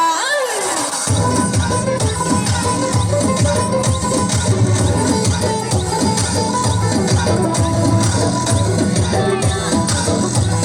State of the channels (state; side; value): identical; both; correlation 1.00